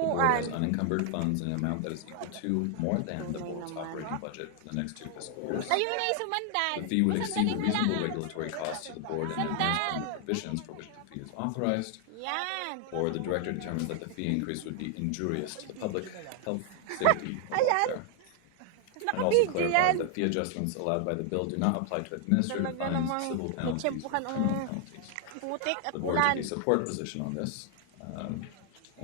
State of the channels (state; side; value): different; both; correlation 0.00